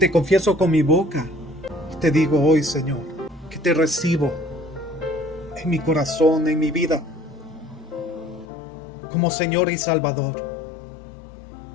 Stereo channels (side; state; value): right; drops out; at 8.5 s